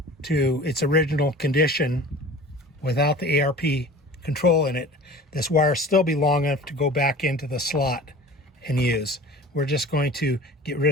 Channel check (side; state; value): both; normal; correlation 0.41